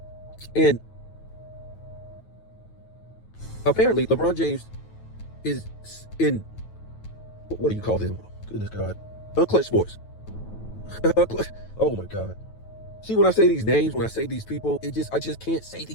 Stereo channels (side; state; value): right; late; 9.2 ms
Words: And apparently LeBron James is in, what do you call them? Goodness God. Unclutched Sports. Oh my God. See, when I say these names, when I say these people, I just can't say